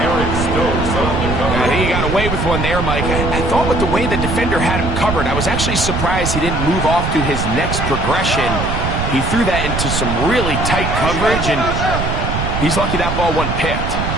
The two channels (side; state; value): right; noise; rumble, 2 dB below the sound